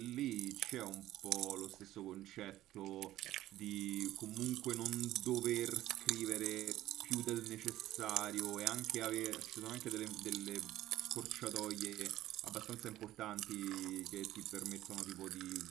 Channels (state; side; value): quieter; left; 14.5 dB